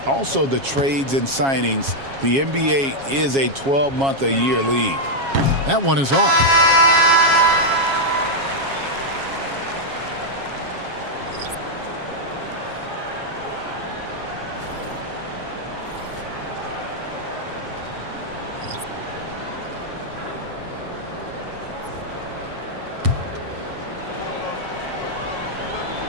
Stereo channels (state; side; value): late; left; 7.3 ms